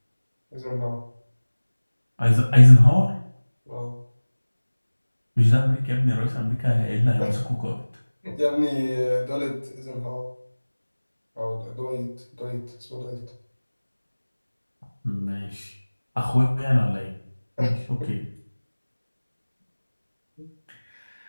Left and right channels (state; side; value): inverted; both; correlation -1.00